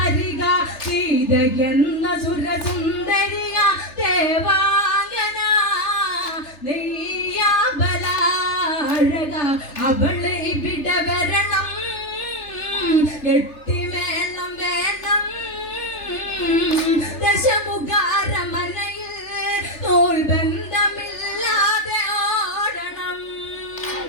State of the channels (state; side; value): late; right; 3.4 ms